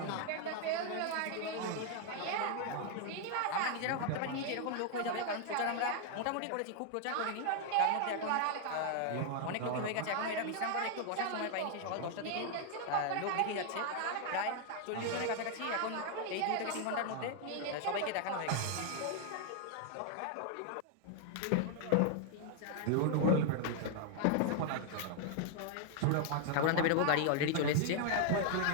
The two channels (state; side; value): different; both; correlation 0.00